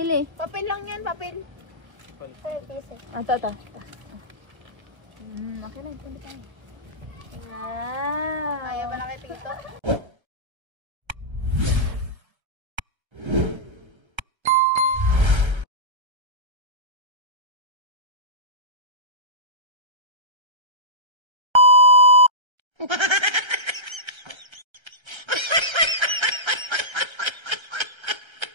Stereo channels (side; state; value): left; late; 1.3 ms